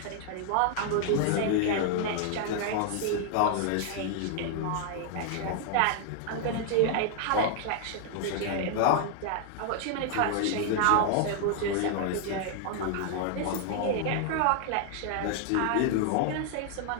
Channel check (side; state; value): both; different; correlation 0.00